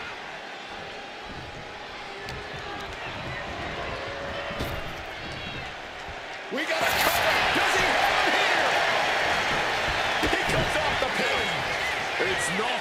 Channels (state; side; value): identical; both; correlation 1.00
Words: We got a cover. Does he have him here? He comes off the pin. It's